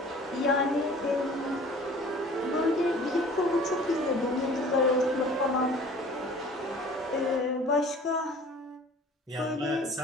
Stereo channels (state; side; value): normal; both; correlation 0.47